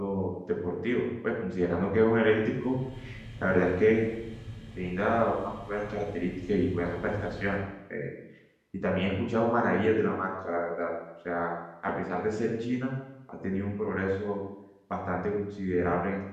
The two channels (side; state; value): both; identical; correlation 1.00